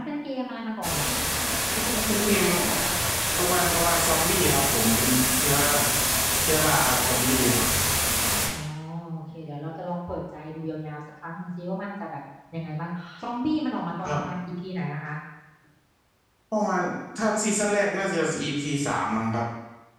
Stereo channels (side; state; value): both; identical; correlation 1.00